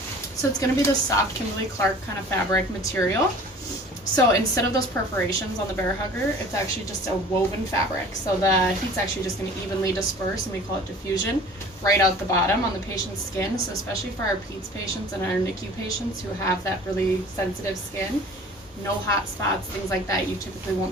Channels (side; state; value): both; normal; correlation 0.46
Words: So it's going to be the soft Kimberly-Clark kind of fabric material. So instead of those perforations on the bear hugger, it's actually just a woven fabric. So the heat's actually just going to evenly disperse, and we call it diffusion, right out the bottom on the patient's skin. So especially for our PEDS patients and our NICU patients who have that really sensitive skin, no hot spots, things like that, you typically